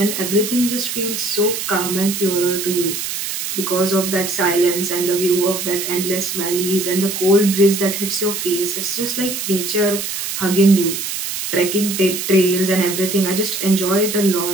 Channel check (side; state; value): right; noise; hiss, 4 dB below the sound